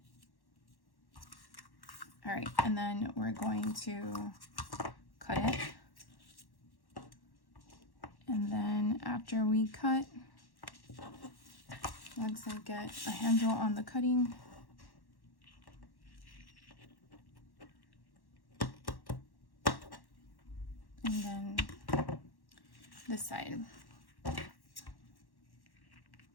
All right, and then we're going to cut it. And then after we cut, once I get a handle on the cutting, and then this side.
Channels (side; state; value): right; late; 1.1 ms